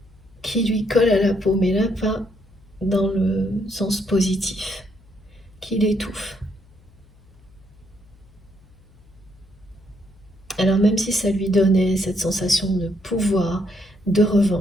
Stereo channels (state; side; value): noise; left; hum, 27 dB below the sound